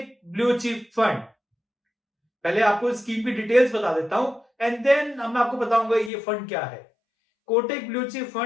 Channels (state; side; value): drops out; right; at 6.1 s